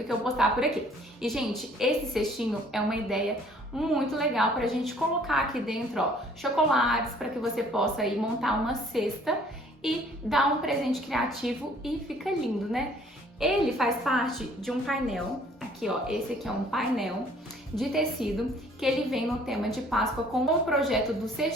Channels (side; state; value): both; normal; correlation 0.57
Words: que eu postar por aqui. E, gente, esse cestinho é uma ideia muito legal para a gente colocar aqui dentro, ó, chocolates, para que você possa aí montar uma cesta e dar um presente criativo e fica lindo, né? Ele faz parte de um painel, aqui ó, esse aqui é um painel de tecido que ele vem no tema de Páscoa com o projeto dos